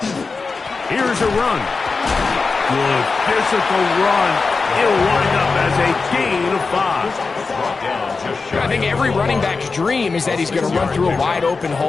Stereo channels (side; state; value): right; quieter; 4.3 dB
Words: Here's a run. Good physical run. It'll wind up as a gain of 5. I think every running back's dream is that he's going to run through a wide open